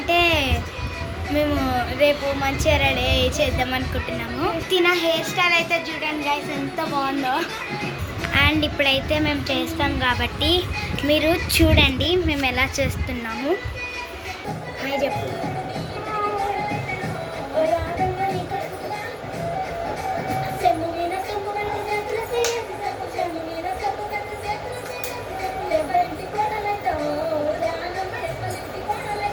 మేము రేపు మంచిగా రెడీ చేద్దాం అనుకుంటున్నాము. తిన హెయిర్ స్టైల్ అయితే చూడండి గైస్ ఎంత బాగుందో. అండ్ ఇప్పుడైతే మేము చేస్తాం కాబట్టి మీరు చూడండి మేము ఎలా చేస్తున్నాము. హాయ్ చెప్పు.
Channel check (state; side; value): identical; both; correlation 1.00